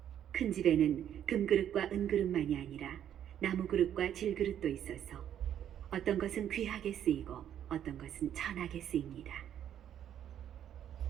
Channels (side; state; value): left; quieter; 10.1 dB